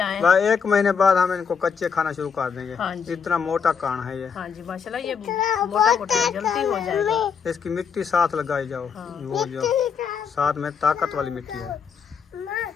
1 महीने बाद हम इनको कच्चे खाना शुरू कर देंगे। हाँ जी। इतना मोटा कान है ये। हाँ जी माशाल्लाह, ये मोटा मोटा जल्दी हो जाएगा। इसकी मिट्टी साथ लगाई जाओ। हाँ। वो जो साथ में ताकत वाली मिट्टी है।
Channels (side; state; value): right; quieter; 6.5 dB